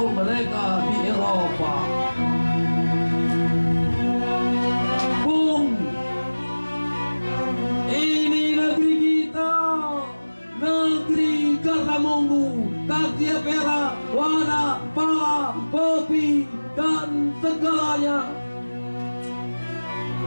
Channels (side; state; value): both; inverted; correlation -1.00